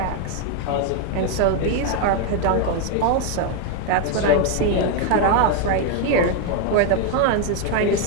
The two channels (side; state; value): both; different; correlation 0.01